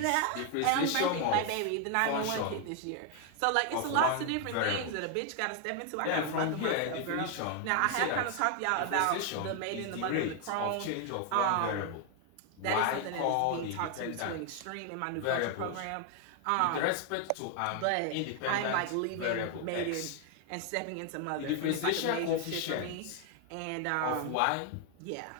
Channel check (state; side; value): different; both; correlation 0.00